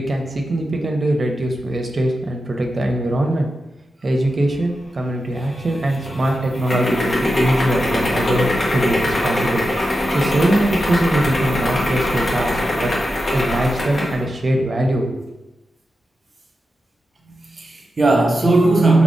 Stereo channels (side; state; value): both; normal; correlation 0.90